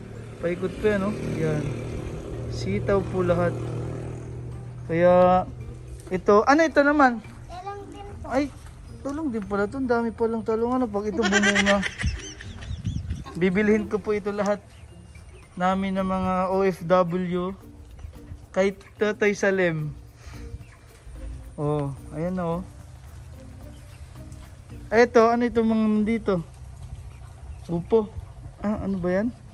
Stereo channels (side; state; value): both; identical; correlation 1.00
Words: Paikot po yan, no? Yan. Sitaw po lahat. Kaya ito, ano ito naman? Talang din. Ay, talong din pala ito. Ang dami palang talong. Ano pag ito bumunga? Bibilhin ko po ito lahat namin ng mga OFW kay Tutoy Salim. Oh, ayan oh. Ito, ano ito mga dito? Upo. Ah, ano ba yan?